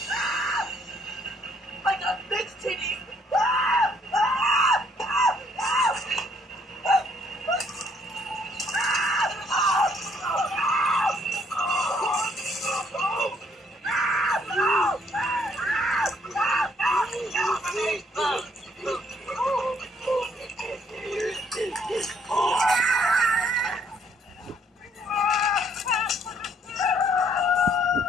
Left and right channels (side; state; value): both; normal; correlation 0.66